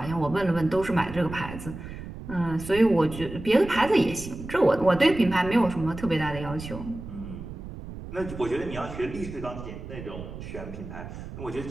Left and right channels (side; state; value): right; noise; rumble, 11 dB below the sound